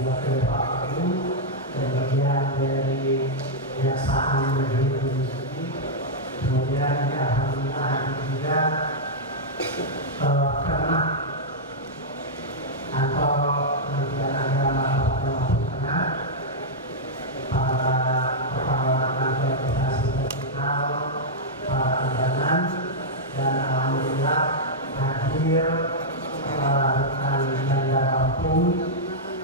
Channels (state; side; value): normal; both; correlation -0.07